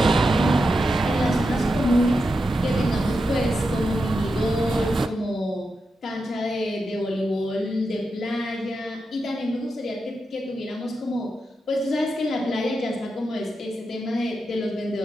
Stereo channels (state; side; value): normal; both; correlation 0.88